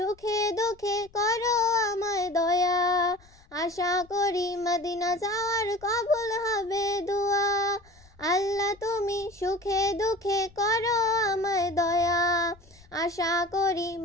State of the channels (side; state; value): left; noise; rumble, 27 dB below the sound